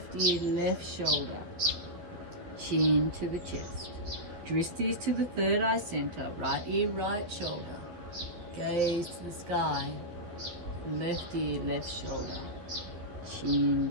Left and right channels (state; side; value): late; left; 12 ms